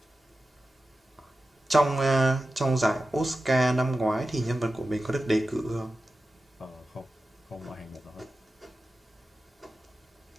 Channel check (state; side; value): normal; both; correlation 0.94